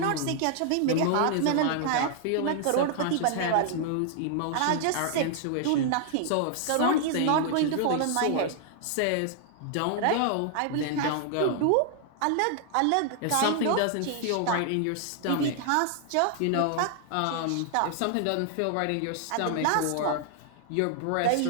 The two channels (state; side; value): different; both; correlation 0.00